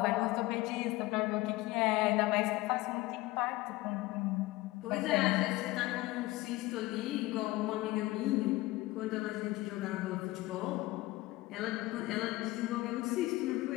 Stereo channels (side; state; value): right; quieter; 19.4 dB